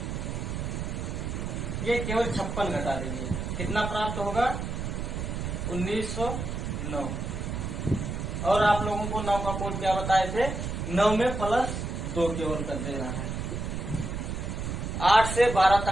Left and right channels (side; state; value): right; noise; rumble, 4 dB below the sound